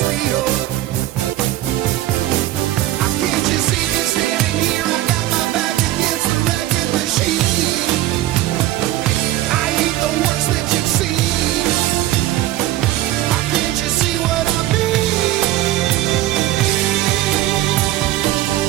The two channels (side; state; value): left; quieter; 15.0 dB